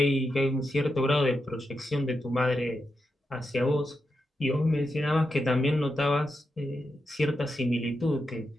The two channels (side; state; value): both; normal; correlation 0.86